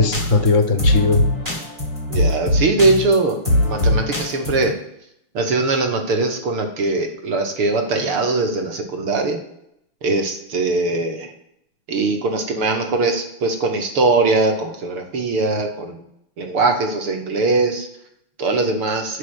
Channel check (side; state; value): left; late; 6.8 ms